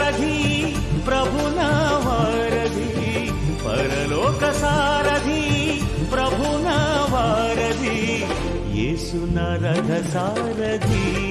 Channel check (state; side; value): identical; both; correlation 1.00